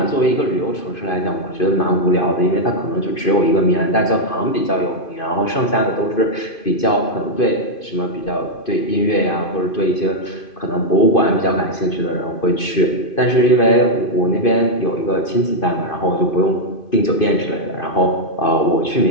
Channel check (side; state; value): right; late; 2.5 ms